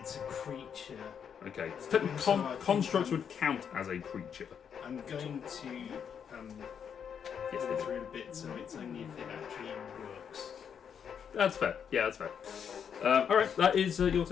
a creature. Okay. So technically, constructs would count as a creature. I'm going to Yes, go they do. through a bit, so it's only if it actually works. That's fair. Yeah, that's fair. Alright, that is your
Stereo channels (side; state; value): right; quieter; 7.6 dB